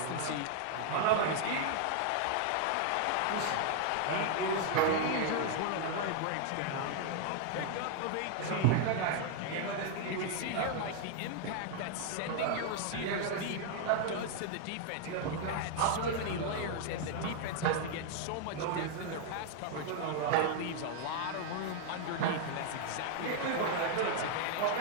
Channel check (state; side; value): different; both; correlation 0.00